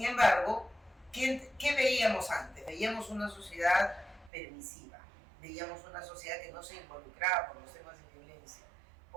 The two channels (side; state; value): left; drops out; at 4.3 s